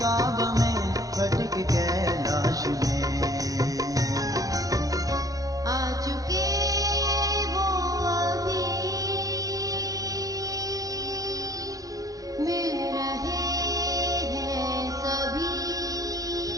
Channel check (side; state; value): left; late; 0.17 ms